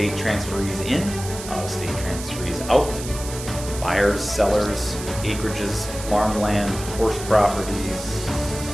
transferees in, out-of-state transferees out, buyers, sellers, acreages, farmland, horse properties,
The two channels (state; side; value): noise; right; hiss, 11 dB below the sound